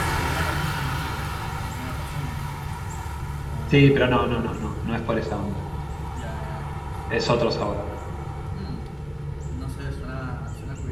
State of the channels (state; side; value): identical; both; correlation 1.00